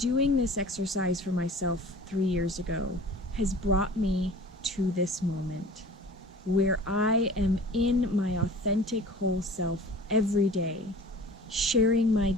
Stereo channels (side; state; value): both; normal; correlation 0.43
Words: this exercise for myself 3 years ago has brought me to this moment where I am in my authentic whole self every day, sharing my